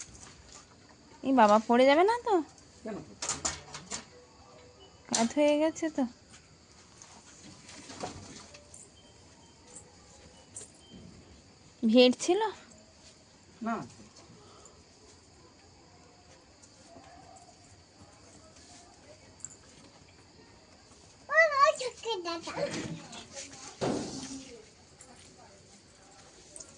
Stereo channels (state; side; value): identical; both; correlation 1.00